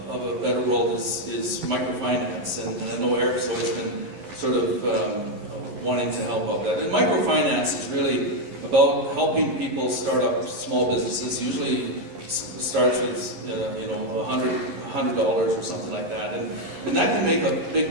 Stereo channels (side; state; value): left; late; 11 ms